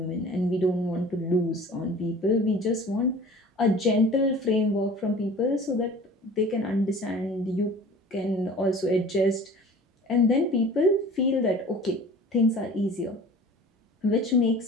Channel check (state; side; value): normal; both; correlation 0.43